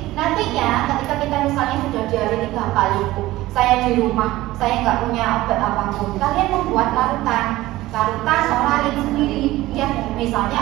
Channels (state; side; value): quieter; left; 17.2 dB